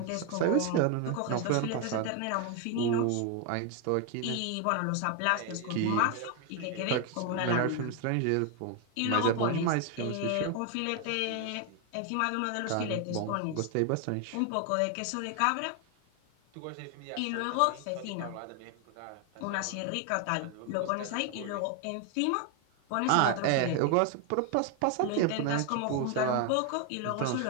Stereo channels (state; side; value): different; both; correlation 0.01